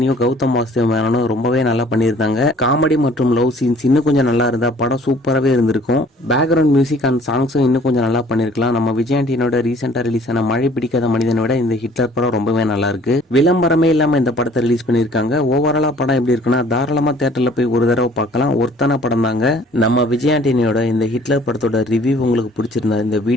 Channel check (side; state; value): both; normal; correlation 0.54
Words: கௌதம் வாசுதேவனும் ரொம்பவே நல்லா பண்ணியிருந்தாங்க. காமெடி மற்றும் லவ் சீன்ஸ் இன்னும் கொஞ்சம் நல்லா இருந்தா படம் சூப்பராகவே இருந்திருக்கும். பேக்ரவுண்ட் மியூசிக் அண்ட் சாங்ஸும் இன்னும் கொஞ்சம் நல்லா பண்ணிருக்கலாம். நம்ம விஜய் ஆண்டனியோட ரீசெண்டா ரிலீஸ் ஆன மழை பிடிக்காத மனிதனை விட இந்த ஹிட்லர் படம் ரொம்பவே நல்லா இருக்கு. விளம்பரமே இல்லாம இந்த படத்தை ரிலீஸ் பண்ணிருக்காங்க. ஓவராலா படம் எப்படி இருக்குன்னா தாராளமா தியேட்டர்ல போய் ஒரு தடவை பார்க்கலாம். ஒருத்தான படம் தாங்க. நம்ம விஜய் ஆண்டனியோட இந்த ஹிட்லர் படத்தோட ரிவ்யூ உங்களுக்கு பிடிச்சிருந்தா இந்த